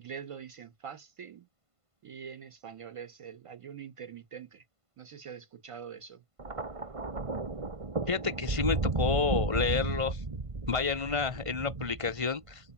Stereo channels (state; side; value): late; left; 1.5 ms